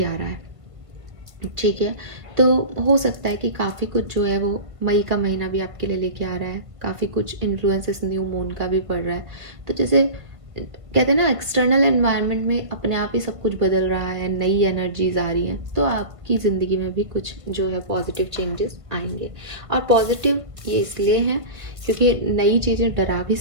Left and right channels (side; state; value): left; late; 1.7 ms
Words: आ रहा है, ठीक है। तो हो सकता है कि काफ़ी कुछ जो है वो मई का महीना भी आपके लिए लेके आ रहा है। काफ़ी कुछ इन्फ्लुएंसेस न्यू मून का भी पड़ रहा है। तो जैसे कहते हैं ना एक्सटर्नल एनवायरनमेंट में अपने आप ही सब कुछ बदल रहा है, नई एनर्जीज आ रही हैं, तो आपकी ज़िंदगी में भी कुछ जो है पॉजिटिव चेंजेस आएंगे। और पॉजिटिव ये इसलिए हैं क्योंकि नई चीज़ें डरा भी